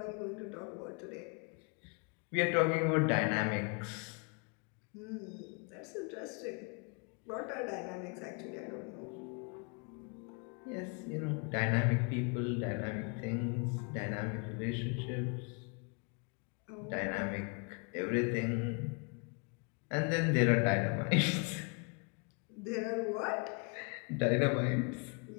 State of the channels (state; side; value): quieter; right; 36.0 dB